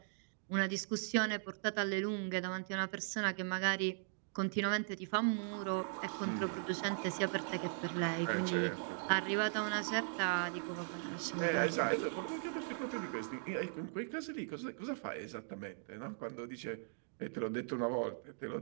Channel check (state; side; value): silent; left; digital silence